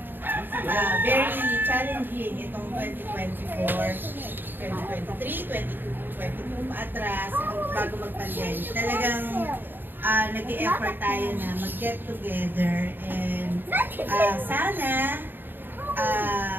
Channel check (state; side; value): late; left; 0.094 ms